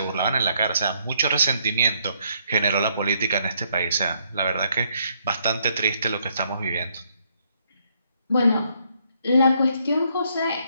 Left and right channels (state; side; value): inverted; both; correlation -0.71